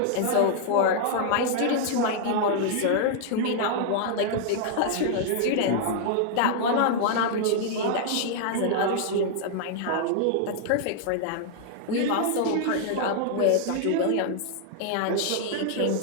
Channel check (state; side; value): different; both; correlation -0.01